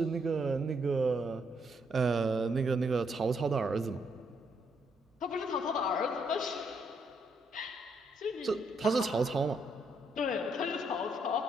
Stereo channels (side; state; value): both; normal; correlation 0.75